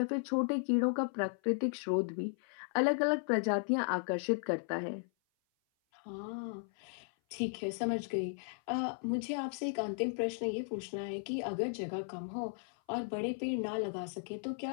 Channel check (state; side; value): silent; right; 54 dB below the other